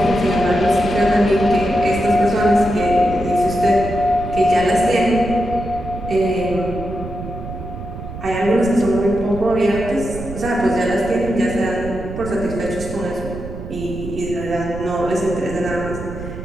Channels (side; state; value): right; noise; rumble, 10 dB below the sound